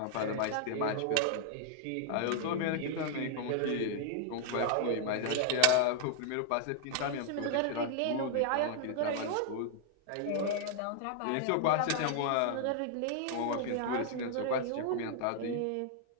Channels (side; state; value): both; different; correlation 0.00